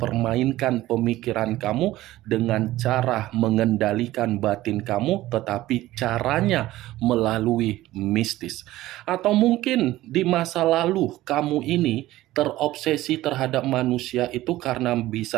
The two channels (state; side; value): quieter; left; 16.2 dB